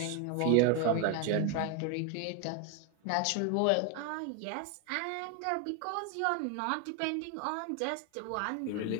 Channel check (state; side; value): different; both; correlation 0.01